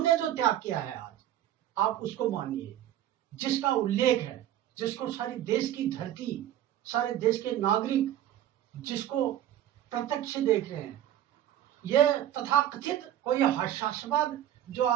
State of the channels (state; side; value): quieter; left; 12.0 dB